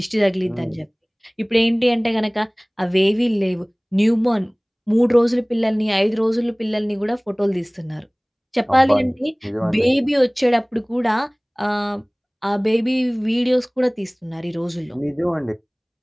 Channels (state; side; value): identical; both; correlation 1.00